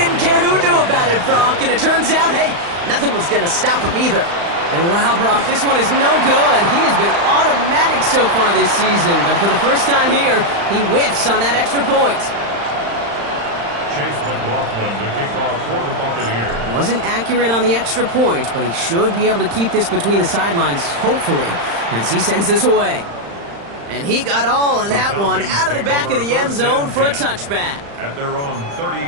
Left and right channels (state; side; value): late; left; 35 ms